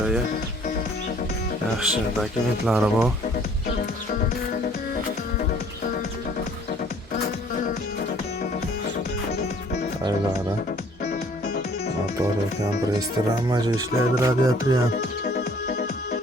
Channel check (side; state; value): both; normal; correlation 0.57